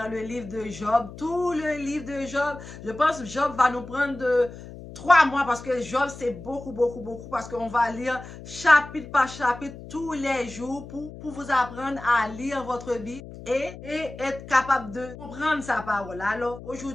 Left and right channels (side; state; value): left; noise; hum, 14 dB below the sound